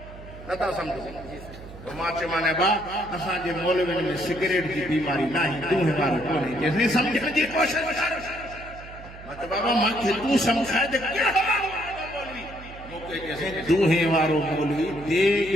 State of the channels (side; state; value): right; noise; hum, 16 dB below the sound